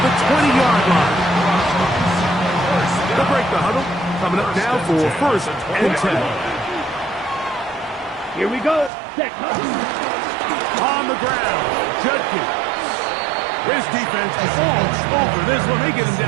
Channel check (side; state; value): left; drops out; at 8.9 s